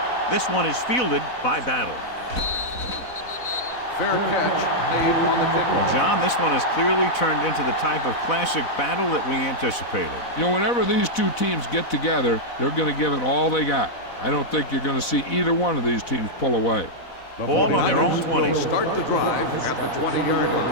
This one is fielded by Battle. Fair catch made on the kickoff. Well, John, this one has clearly turned into the type of classic battle that we anticipated. You know, whenever these two teams get together, they're going to give it all they got. I don't think you're going to see either one of these teams pull away. The Ball on their own 20. will start the drive at the 20-yard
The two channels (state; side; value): late; right; 4.1 ms